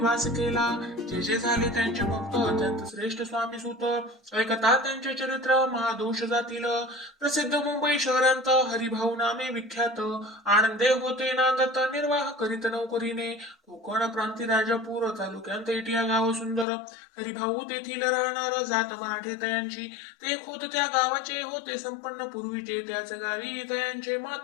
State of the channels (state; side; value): drops out; right; at 16.7 s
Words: केला जे जे झाले त्यांचे भक्त अत्यंत श्रेष्ठ स्वामी सुत ऐकता त्यांचे चरित्र महादोष जातील प्रसिद्ध मुंबई शहरांत हरिभाऊ नामे विख्यात आनंदे होते नांदत निर्वाह करीत नौकरीने कोकण प्रांती राजापूर तालुक्यात एटिया गाव सुंदर हरिभाऊ तेथील राहणार जात मराठे तयांची ते खोत त्या गावाचे होते संपन्न पूर्वीचे त्याच गावी तयांचे